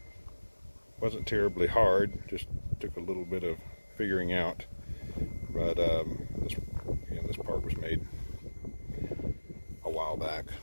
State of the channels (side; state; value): both; inverted; correlation -1.00